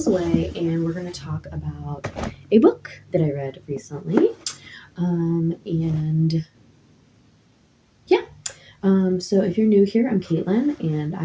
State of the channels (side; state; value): both; identical; correlation 1.00